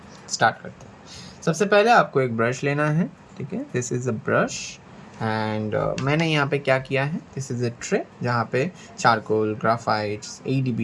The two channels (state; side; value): identical; both; correlation 1.00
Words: स्टार्ट करते हैं। सबसे पहले आपको एक ब्रश लेना है। ठीक है, this is a brush and मैंने यहाँ पे क्या किया है, दिस इज़ अ ट्रे जहाँ पे charcoal, ग्राफाइट्स,